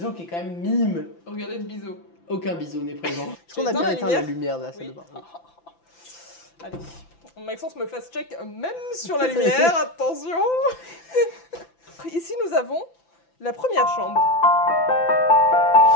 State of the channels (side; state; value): right; late; 5.9 ms